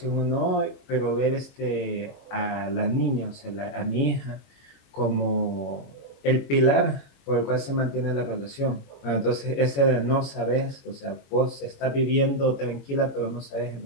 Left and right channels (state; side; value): late; right; 21 ms